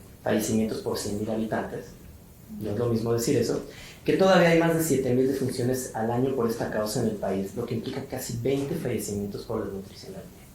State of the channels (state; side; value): identical; both; correlation 1.00